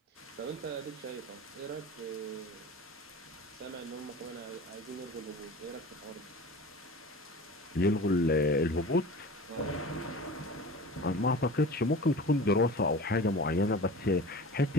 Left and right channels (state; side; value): normal; both; correlation 0.37